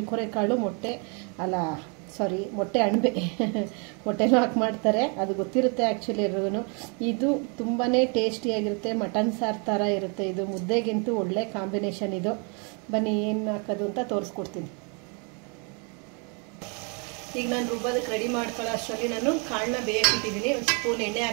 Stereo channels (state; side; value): quieter; left; 35.6 dB